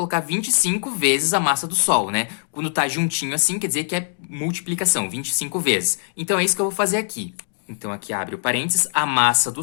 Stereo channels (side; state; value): right; silent; digital silence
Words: 25 vezes a massa do Sol, Quando tá juntinho assim, quer dizer que é multiplicação, 25 vezes. Então, é isso que eu vou fazer aqui. Então, aqui abre o parênteses, a massa do